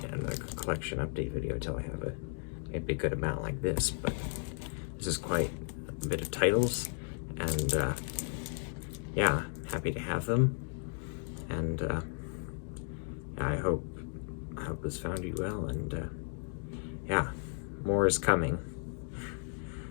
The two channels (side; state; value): right; silent; 55 dB below the other